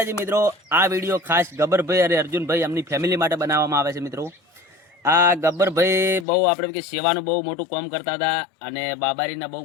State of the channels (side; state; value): right; drops out; at 6.2 s